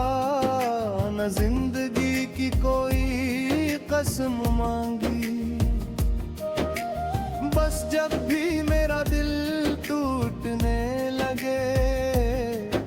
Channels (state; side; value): identical; both; correlation 1.00